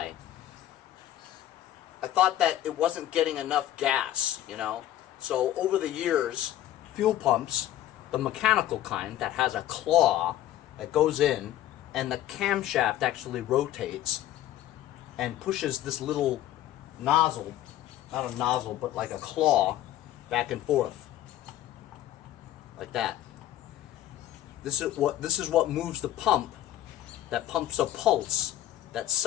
I thought that it wasn't getting enough gas, you know. So over the years, fuel pumps, the mechanical kind that has a claw that goes in, and the camshaft actually rotates and pushes this little nozzle, not a nozzle, but like a claw, back and forth, like that. This is what moves the pump, that pumps a pulse that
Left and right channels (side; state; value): right; quieter; 13.1 dB